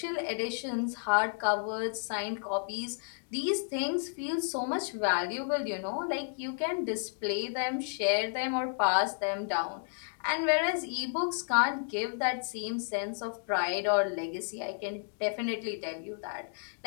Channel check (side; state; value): right; silent; digital silence